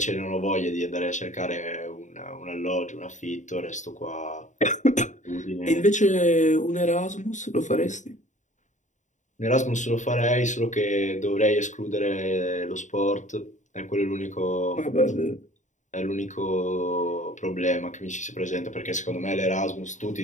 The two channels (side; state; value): right; late; 0.36 ms